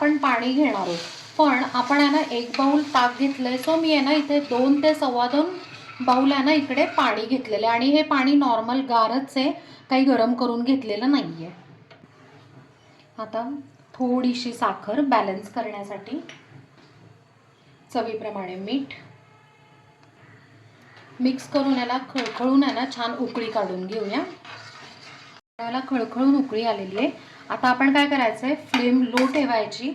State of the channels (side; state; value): both; identical; correlation 1.00